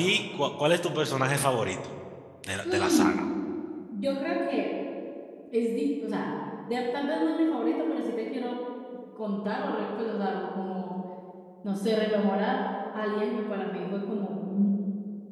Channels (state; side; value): identical; both; correlation 1.00